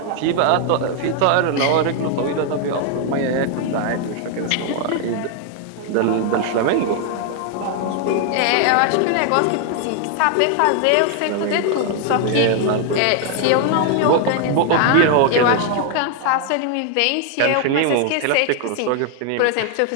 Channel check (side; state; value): both; different; correlation 0.00